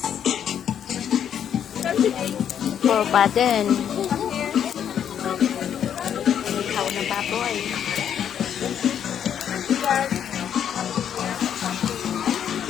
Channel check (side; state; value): right; quieter; 9.0 dB